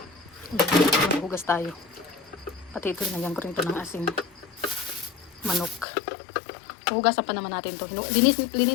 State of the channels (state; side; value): drops out; right; at 5.9 s